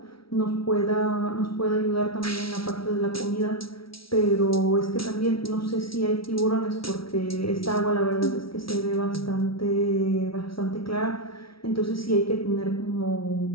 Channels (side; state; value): right; late; 0.75 ms